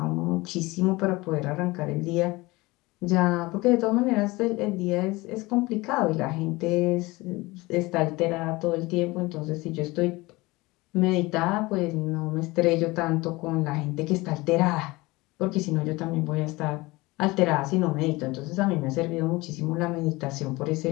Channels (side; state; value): right; quieter; 21.9 dB